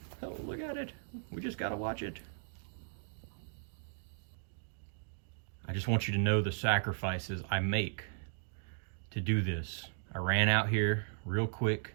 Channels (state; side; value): silent; left; digital silence